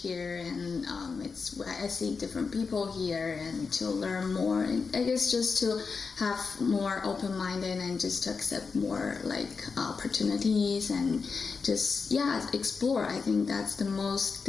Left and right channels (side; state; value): right; quieter; 5.0 dB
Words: here, and I see different people here, and to learn more, and I guess just to have more open-minded and just to accept more like opportunities and just explore. I think that's the most